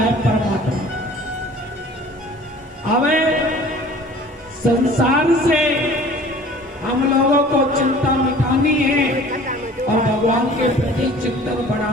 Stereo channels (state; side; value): normal; both; correlation 0.47